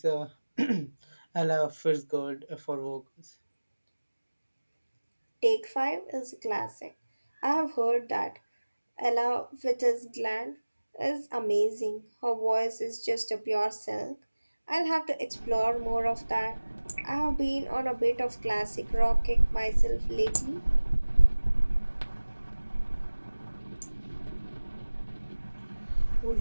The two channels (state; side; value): inverted; both; correlation -1.00